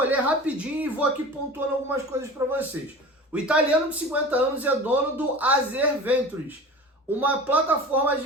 ler rapidinho e vou aqui pontuando algumas coisas para vocês. O italiano de 50 anos é dono do Azer Ventures, uma plataforma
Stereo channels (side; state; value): both; normal; correlation 0.36